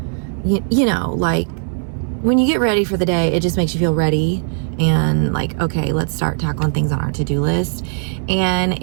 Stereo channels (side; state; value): left; silent; 67 dB below the other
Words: you know, like when you get ready for the day, it just makes you feel ready and like, okay, let's start tackling things on our to-do list. And